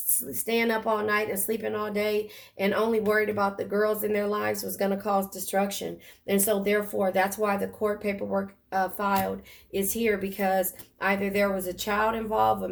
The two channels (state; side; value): identical; both; correlation 1.00